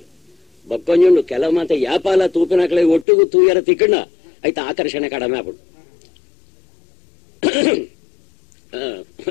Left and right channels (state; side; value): drops out; right; at 3.1 s